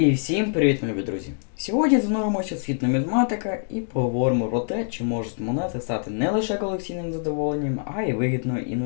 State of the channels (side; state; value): right; silent; 62 dB below the other